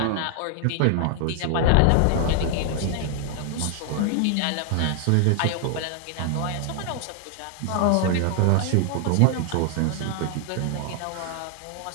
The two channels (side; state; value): both; different; correlation 0.00